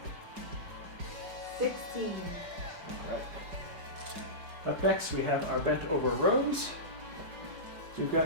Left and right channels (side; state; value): left; late; 5.2 ms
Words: 16. Alright. Up next we have our bent over rows. So we've